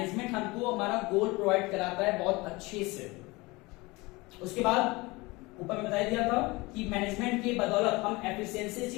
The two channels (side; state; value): right; quieter; 23.4 dB